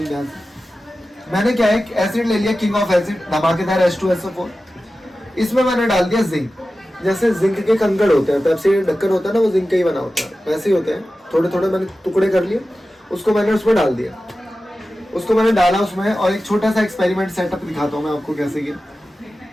ध्यान से। मैंने क्या है, एसिड ले लिया, किंग ऑफ एसिड, धमाकेदार H2SO4। इसमें मैंने डाल दिया जिंक। जैसे जिंक के कंकड़ होते हैं, पेप्सी ढक्कन होता है ना, वो जिंक का ही बना होता है, वैसे ही होते हैं। थोड़े थोड़े मैंने टुकड़े कर लिए, उसको मैंने उसमें डाल दिया। उसको मैंने डाला उसमें, और एक छोटा सा एक्सपेरिमेंट सेटअप दिखाता हूँ मैं आपको कैसे किया।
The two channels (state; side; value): normal; both; correlation 0.94